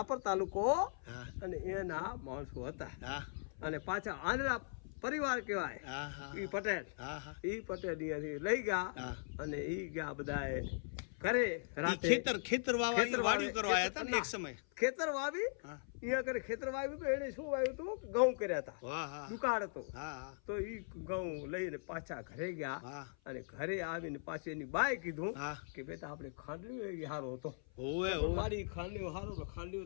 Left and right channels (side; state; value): right; silent; 51 dB below the other